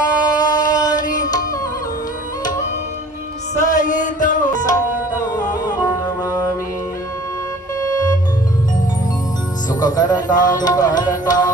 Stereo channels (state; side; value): normal; both; correlation 0.49